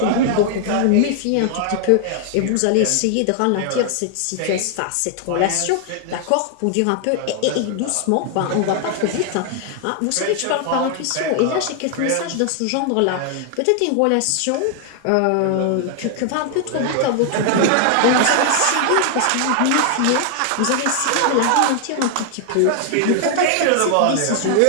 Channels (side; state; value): both; different; correlation 0.00